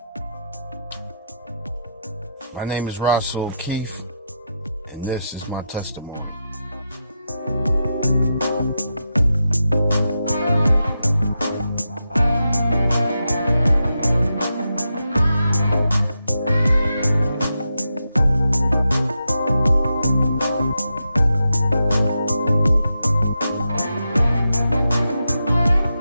My name is Rahsol Keith, and this is my testimony.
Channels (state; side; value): inverted; both; correlation -0.86